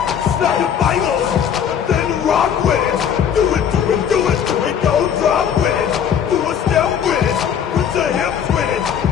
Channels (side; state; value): right; quieter; 8.3 dB